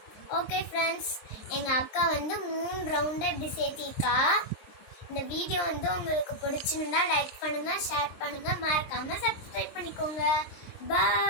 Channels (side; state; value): right; late; 23 ms